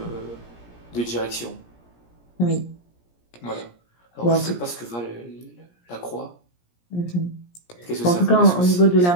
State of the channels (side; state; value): right; late; 17 ms